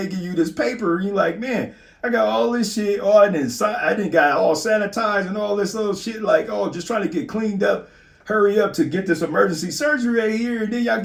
give you this paper, and you like, man, I got all this shit. Oh, I didn't got all sanitized and all this little shit. Like, oh, just trying to get cleaned up. Hurry up to get this emergency surgery right here. And then y'all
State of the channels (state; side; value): identical; both; correlation 1.00